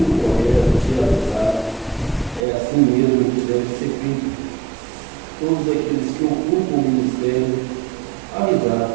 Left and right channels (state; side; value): drops out; left; at 2.5 s